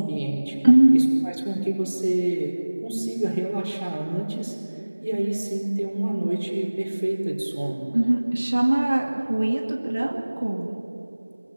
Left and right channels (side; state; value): both; inverted; correlation -1.00